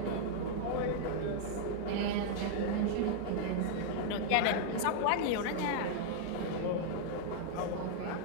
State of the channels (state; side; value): different; both; correlation -0.01